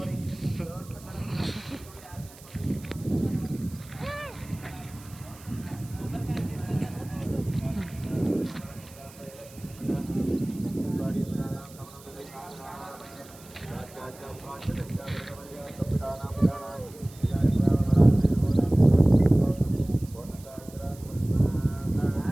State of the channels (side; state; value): right; noise; hiss, 21 dB below the sound